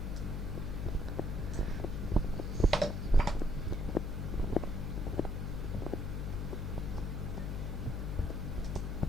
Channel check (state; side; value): noise; left; hum, 2 dB below the sound